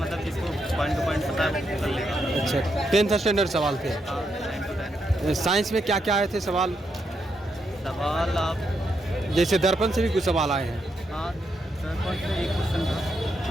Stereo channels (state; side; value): normal; both; correlation 0.80